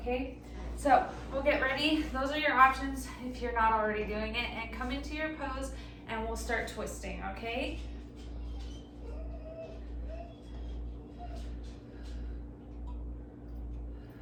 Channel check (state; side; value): identical; both; correlation 1.00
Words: so we'll get ready. Those are your options if you're not already doing it, and come into your pose and we'll start twisting, okay?